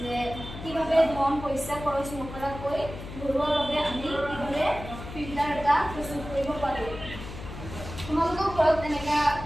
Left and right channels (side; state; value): left; noise; hum, 11 dB below the sound